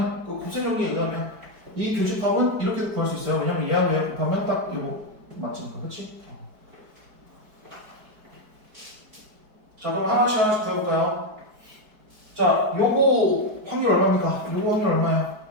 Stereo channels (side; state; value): left; late; 4.6 ms